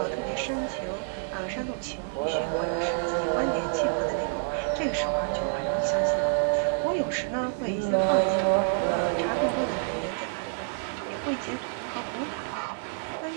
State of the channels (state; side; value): silent; left; digital silence